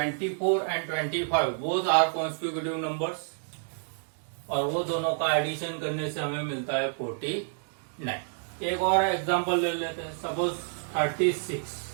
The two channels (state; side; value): silent; left; digital silence